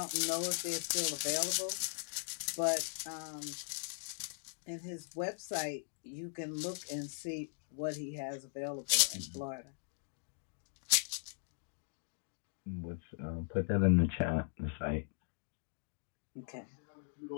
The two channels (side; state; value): right; silent; digital silence